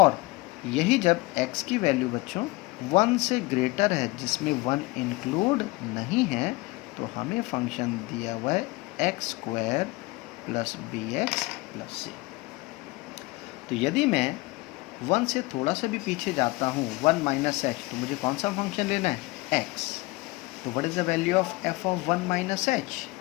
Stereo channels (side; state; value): right; quieter; 22.5 dB